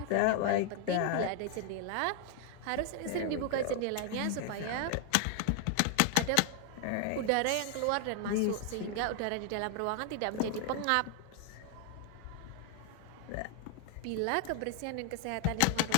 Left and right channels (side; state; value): both; different; correlation 0.00